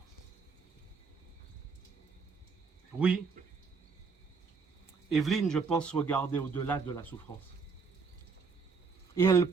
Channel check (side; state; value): left; quieter; 5.0 dB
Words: Oui, Evelyne, je pense, regardait au-delà de la souffrance. Et elle